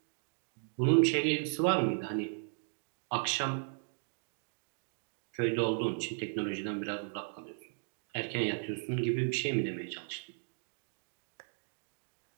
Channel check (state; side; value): silent; left; 54 dB below the other